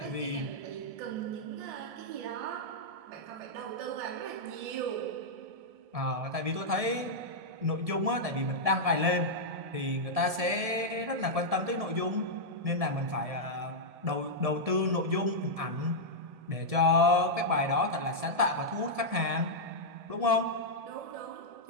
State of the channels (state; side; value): late; left; 1.7 ms